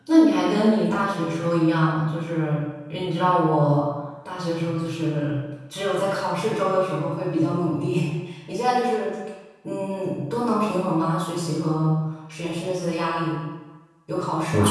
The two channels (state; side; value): identical; both; correlation 1.00